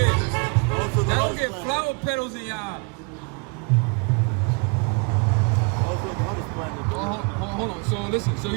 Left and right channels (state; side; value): quieter; left; 33.4 dB